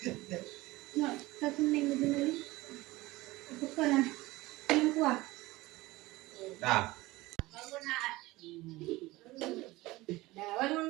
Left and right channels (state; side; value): quieter; left; 19.7 dB